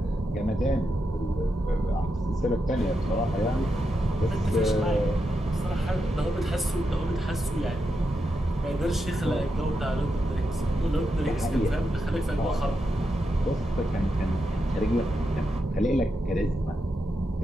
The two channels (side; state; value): both; normal; correlation 0.85